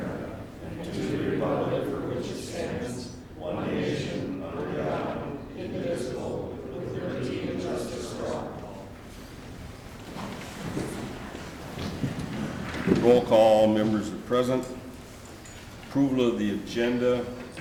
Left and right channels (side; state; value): both; identical; correlation 1.00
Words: and to the republic for which it stands, one nation, under God, indivisible, with liberty and justice for all. Roll call, members are present. Approval of the agenda.